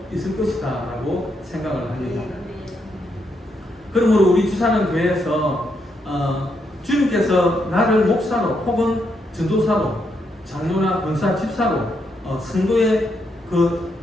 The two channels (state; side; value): normal; both; correlation 0.79